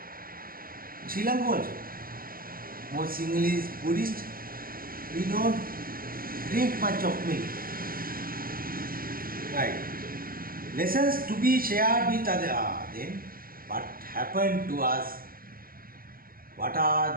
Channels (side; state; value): left; late; 0.42 ms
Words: Sri Lanka also. Most Sinhalese Buddhist, we don't drink much of milk. Right. Lessons to be shared with others. Then, what happened to us? What are